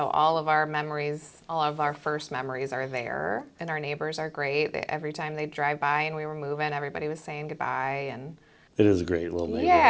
all of our memories, all of our first memories are there. And our neighbors are great. Every time they'd drive by and we were moving, everybody was saying goodbye. And It is a great little neighborhood.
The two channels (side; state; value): both; identical; correlation 1.00